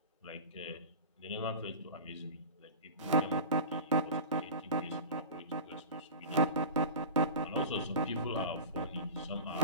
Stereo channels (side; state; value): both; inverted; correlation -0.32